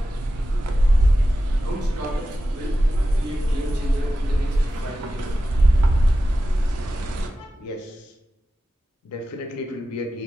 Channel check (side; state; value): both; normal; correlation 0.93